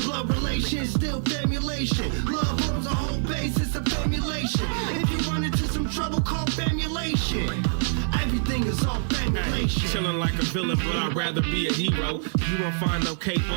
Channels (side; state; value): left; silent; digital silence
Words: relation, still famulation. Love forms the whole basis of famulation. If you run into some trouble, call famulation. Everything is all famulation. Chilling like a villain, but I'd rather be a hero. You won't find no cape